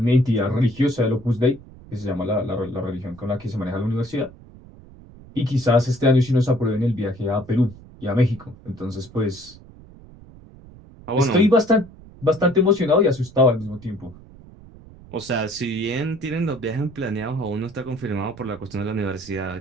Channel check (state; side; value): noise; right; rumble, 21 dB below the sound